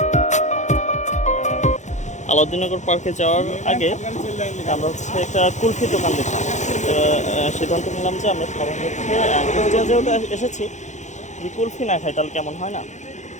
আলাউদ্দিননগর পার্কে যাওয়ার আগে আমরা হচ্ছে একটা কুলফি দোকান দেখলাম। সিদ্ধান্ত নিলাম যে আমরা সবাই হচ্ছে যেহেতু এসেছি, যদি কুলফি না খাই তাহলে কেমন হয় না।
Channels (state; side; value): late; right; 0.34 ms